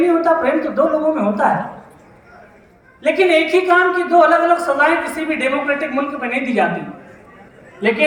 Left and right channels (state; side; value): identical; both; correlation 1.00